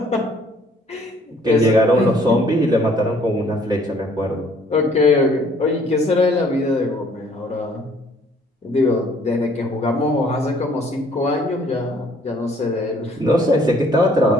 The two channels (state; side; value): normal; both; correlation 0.60